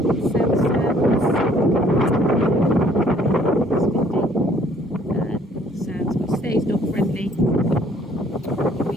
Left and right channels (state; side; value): normal; both; correlation 0.60